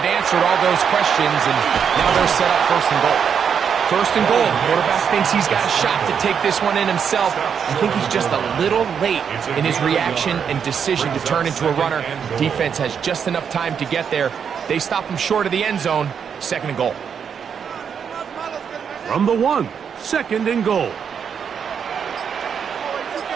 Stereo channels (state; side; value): quieter; left; 7.2 dB